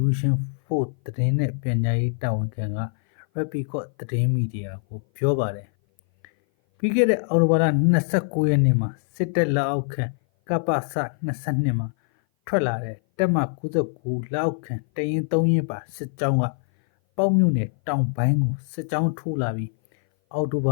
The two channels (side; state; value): right; silent; 58 dB below the other